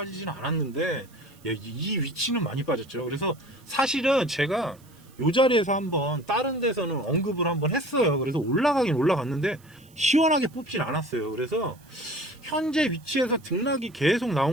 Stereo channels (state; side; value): noise; right; hiss, 28 dB below the sound